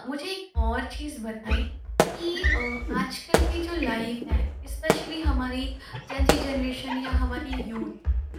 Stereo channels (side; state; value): both; identical; correlation 1.00